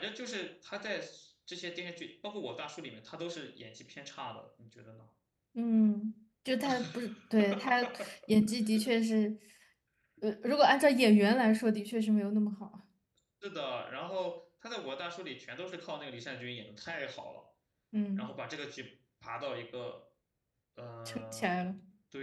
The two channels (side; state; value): both; identical; correlation 1.00